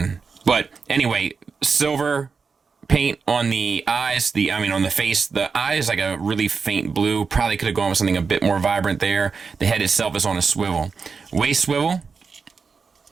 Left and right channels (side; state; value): left; quieter; 5.2 dB